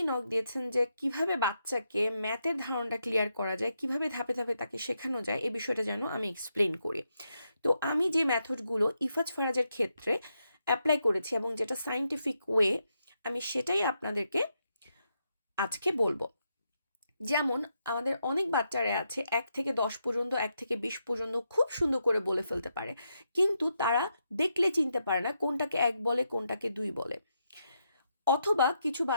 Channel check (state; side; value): inverted; both; correlation -0.82